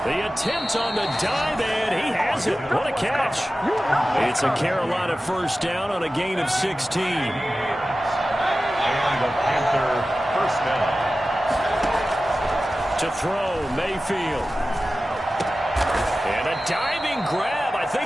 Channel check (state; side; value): normal; both; correlation 0.95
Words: attempt on the dive, and he has it. What a catch. It's a Carolina 1st down on a gain of 16. And the Panther 1st down. To throw, Mayfield. And a diving grab. I